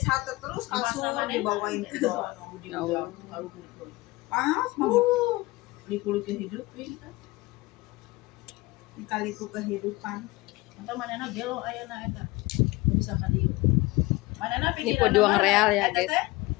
terus kasur dibawain ke bawah. Panas banget. Kulit hidup kan. Dikali itu kehidupan. Atau manehna gelo ayeuna eta. Bisa ka dieu. Manehna Ini pikiran pejuang real ya, guys.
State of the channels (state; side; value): quieter; right; 21.2 dB